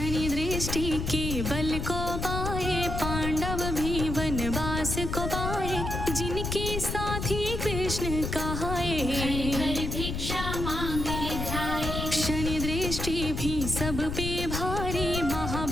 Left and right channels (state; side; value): noise; left; rumble, 3 dB below the sound